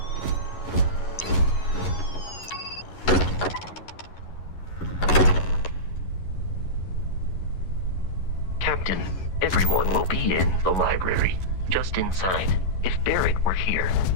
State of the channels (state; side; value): late; right; 11 ms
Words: Captain, everyone will be in the library, just inside. If Barrett were here,